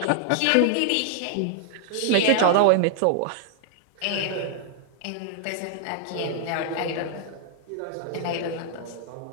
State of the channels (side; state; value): both; different; correlation 0.00